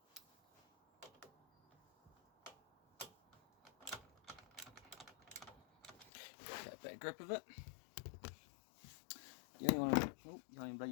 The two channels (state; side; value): drops out; right; at 6.1 s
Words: Get a bit of grip of it. You only want to, oh, you ain't